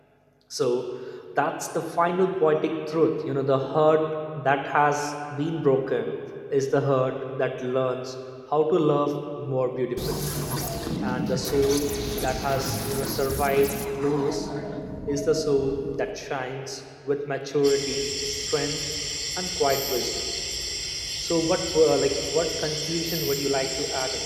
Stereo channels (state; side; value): identical; both; correlation 1.00